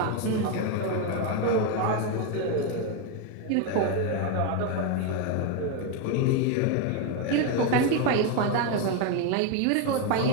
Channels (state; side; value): different; both; correlation 0.02